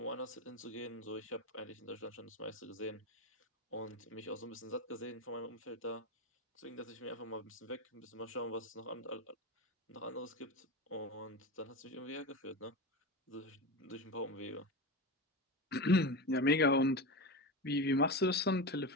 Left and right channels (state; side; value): normal; both; correlation 0.21